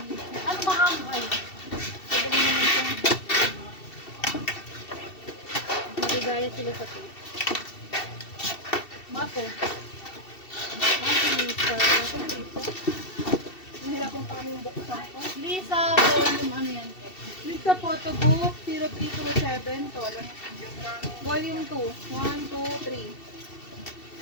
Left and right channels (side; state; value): right; late; 2.7 ms